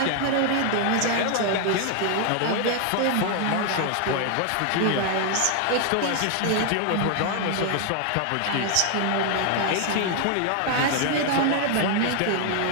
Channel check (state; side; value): different; both; correlation 0.00